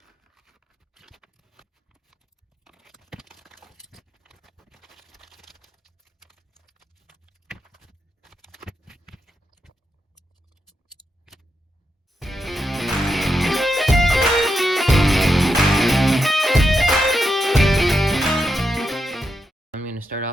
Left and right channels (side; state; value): both; normal; correlation 0.85